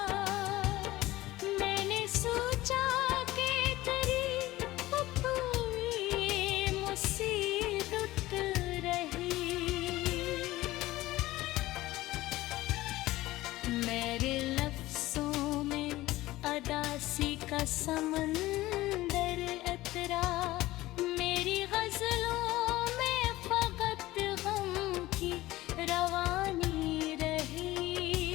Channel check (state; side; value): quieter; right; 17.4 dB